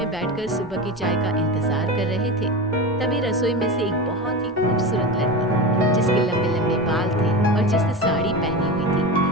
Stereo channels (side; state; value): both; normal; correlation 0.24